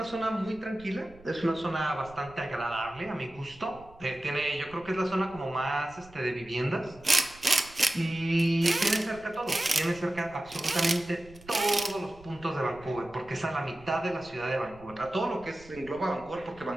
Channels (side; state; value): right; noise; rumble, 22 dB below the sound